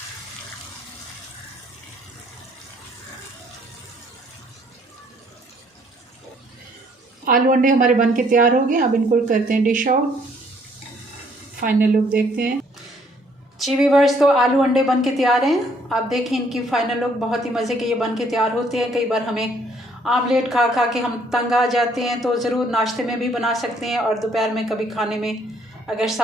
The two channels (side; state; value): both; normal; correlation 0.64